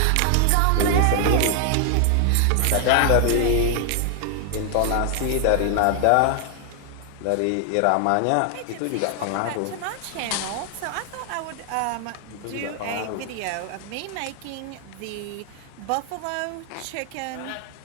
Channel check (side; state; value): both; different; correlation 0.00